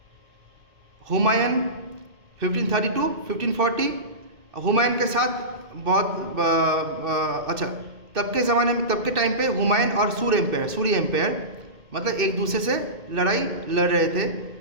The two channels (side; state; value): left; late; 2.2 ms